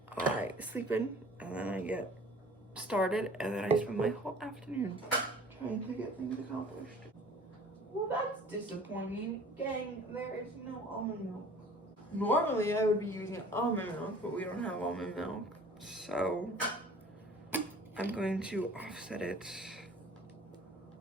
I sleep in and then I get started and then I spend my whole afternoon trying to get things accomplished. Well, that's disappointing. Gang, there is no almond milk. Normally I would be using almond milk, but we don't have almond milk, so I'm going to offset it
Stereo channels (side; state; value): both; normal; correlation 0.48